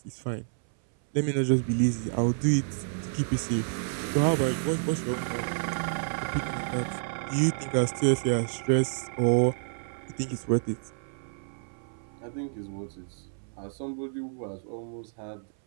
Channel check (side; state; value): left; silent; 58 dB below the other